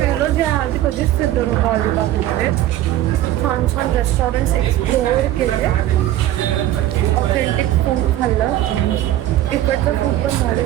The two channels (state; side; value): quieter; left; 13.6 dB